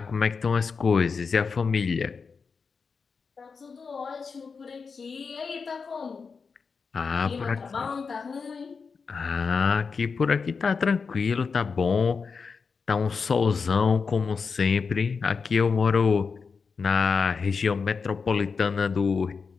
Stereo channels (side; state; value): right; quieter; 5.2 dB